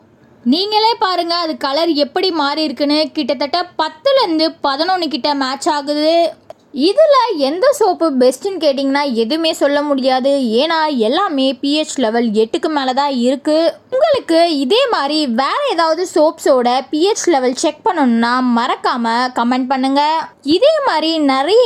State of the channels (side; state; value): both; identical; correlation 1.00